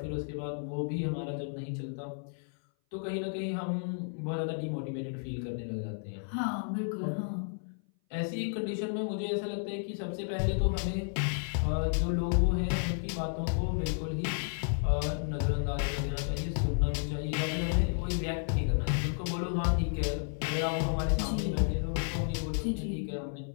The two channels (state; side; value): silent; right; 56 dB below the other